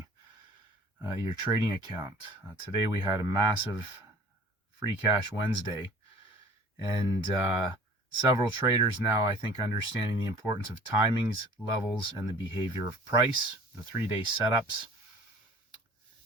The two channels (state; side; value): normal; both; correlation 0.47